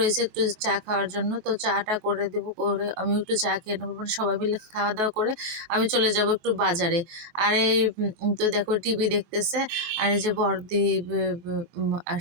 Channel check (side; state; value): left; late; 23 ms